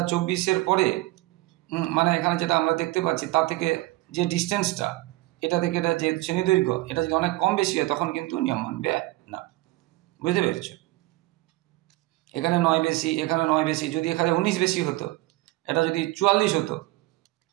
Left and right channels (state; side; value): quieter; left; 19.3 dB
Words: 24-এর পরে, মানে এখানে যেটা আমরা দেখতে পাচ্ছি, তার থেকে যে ডিস্টেন্সটা, এটা থেকে এটা যে শ্রেণী দৈর্ঘ্য, এটা যদি অনেক কম বেশি হয়, তখন কিন্তু নিয়ম মানবে না। বুঝতে পেরেছো? এখানে 9 বেশি, এখানে 9 বেশি, যদি এখানে 19 বেশি হতো, এটা যদি 44 হতো,